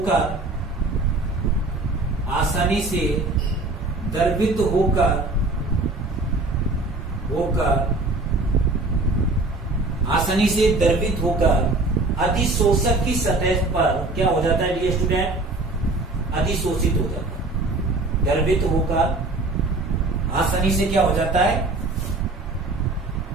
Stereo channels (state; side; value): quieter; left; 3.1 dB